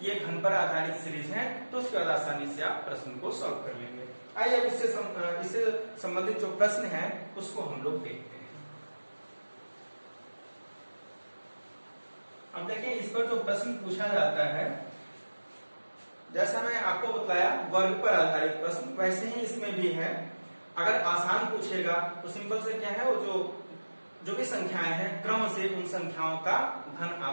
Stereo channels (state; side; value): inverted; both; correlation -1.00